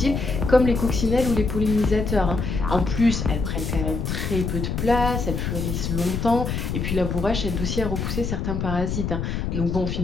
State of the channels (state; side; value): noise; left; rumble, 2 dB below the sound